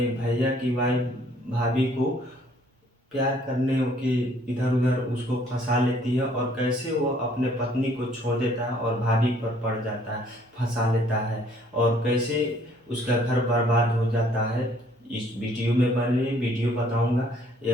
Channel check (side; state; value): both; normal; correlation 0.61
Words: भैया की वाइफ़ भाभी को प्यार करने के इधर-उधर उसको फँसा लेती है, और कैसे वो अपने पत्नी को छोड़ देता है और भाभी पर पड़ जाता है, फँसा लेता है, और कैसे उसका घर बर्बाद हो जाता है। इस वीडियो में बने वीडियो बताऊँगा।